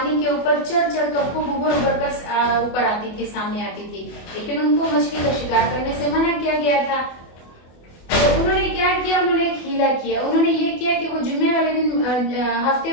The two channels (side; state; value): right; late; 24 ms